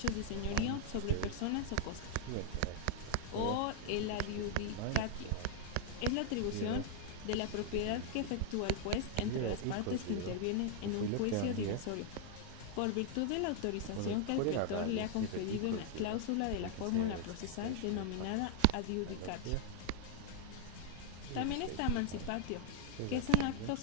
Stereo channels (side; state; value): both; different; correlation 0.00